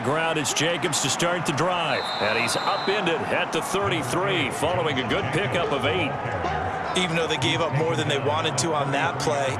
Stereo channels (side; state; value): both; identical; correlation 1.00